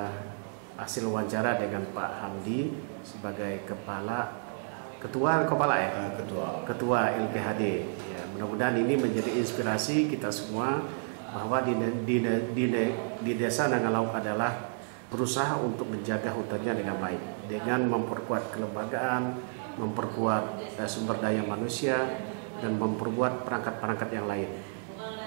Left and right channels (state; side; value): silent; left; digital silence